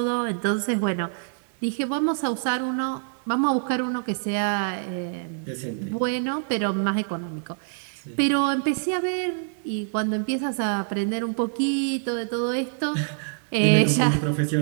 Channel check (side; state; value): left; silent; digital silence